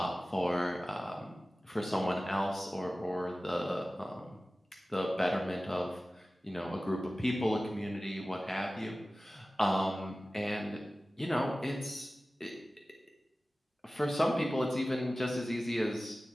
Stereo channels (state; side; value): normal; both; correlation 0.96